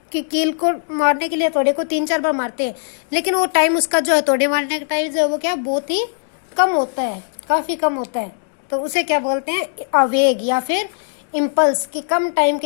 कि कील को मारने के लिए हथौड़े को 3-4 बार मारते हैं, लेकिन वो टाइम उसका जो हथौड़े मारने का टाइम जो है वो क्या बहुत ही कम होता है, काफी कम होता है। तो उसे क्या बोलते हैं, आवेग या फिर इम्पल्स। कि कम टाइम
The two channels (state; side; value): silent; right; digital silence